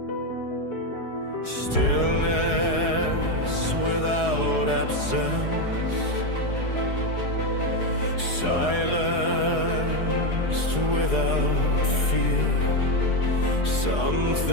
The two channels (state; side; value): late; right; 4.8 ms